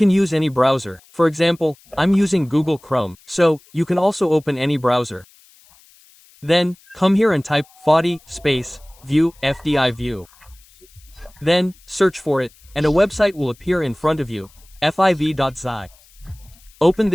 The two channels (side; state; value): left; noise; hiss, 28 dB below the sound